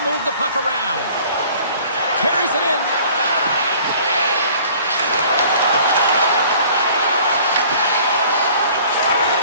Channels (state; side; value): inverted; both; correlation -0.51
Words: move the puck around. Carries it in.